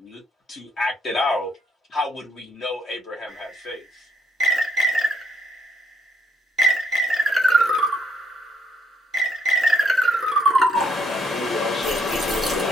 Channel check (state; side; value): normal; both; correlation 0.70